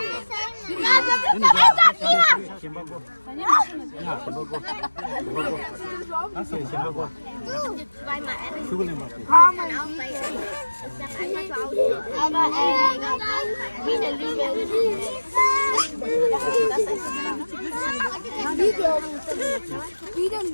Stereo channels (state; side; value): inverted; both; correlation -1.00